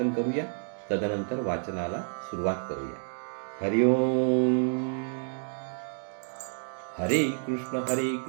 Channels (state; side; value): silent; left; digital silence